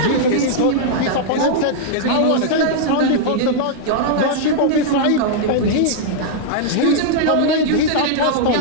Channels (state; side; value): different; both; correlation -0.02